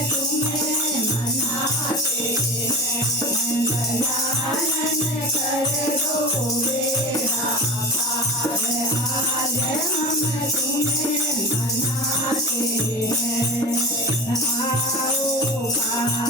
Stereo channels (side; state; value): both; normal; correlation 0.31